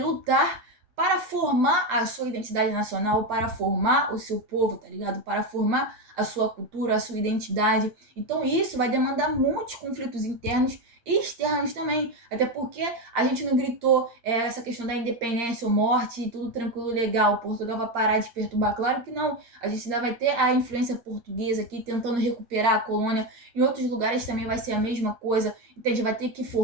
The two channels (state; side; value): late; left; 8.6 ms